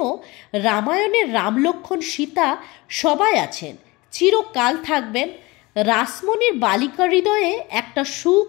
রামায়ণের রাম, লক্ষ্মণ, সীতা সবাই আছেন, চিরকাল থাকবেন। রাসমণির বালিকা হৃদয়ে একটা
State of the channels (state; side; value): quieter; right; 22.7 dB